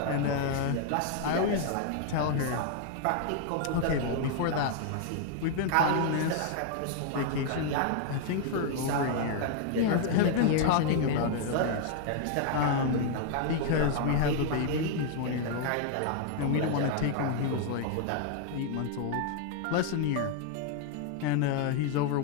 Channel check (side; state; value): both; different; correlation 0.00